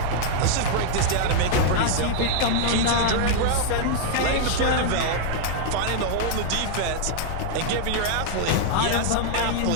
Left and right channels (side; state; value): both; different; correlation -0.01